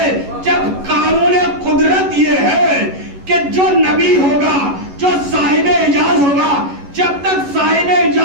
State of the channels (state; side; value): late; left; 11 ms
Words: جب قانون قدرت یہ ہے کہ جو نبی ہوگا، جو صاحب اعجاز ہوگا، جب تک صاحب